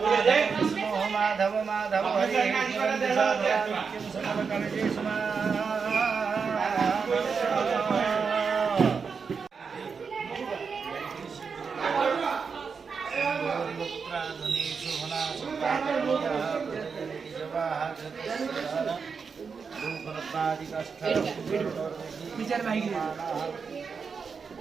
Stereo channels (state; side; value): quieter; left; 5.6 dB